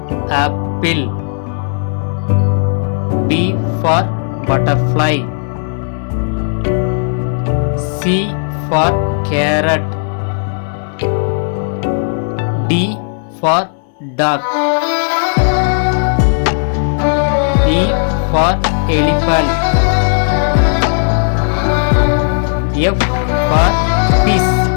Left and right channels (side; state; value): right; silent; digital silence